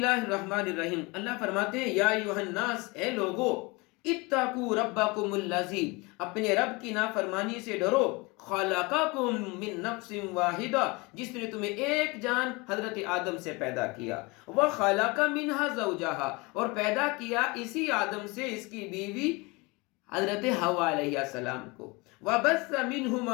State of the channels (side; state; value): right; quieter; 26.1 dB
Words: الرحمن الرحیم۔ اللہ فرماتے ہیں یا ایھا الناس، اے لوگو، اتقوا ربکم الذی، اپنے رب کی نافرمانی سے ڈرو، خلقکم من نفس واحدہ، جس نے تمہیں ایک جان حضرت آدم سے پیدا کیا، وخلق منہا زوجہا، اور پیدا کیا اسی آدم سے اس کی بیوی حضرت حوا علیہ السلام کو، وَبَثَّ